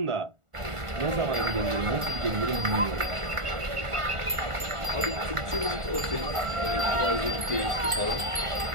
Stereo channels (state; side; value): late; left; 1.4 ms